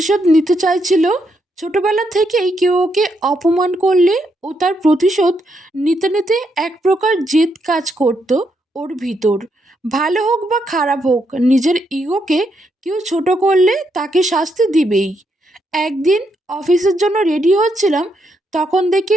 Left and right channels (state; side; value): normal; both; correlation 0.78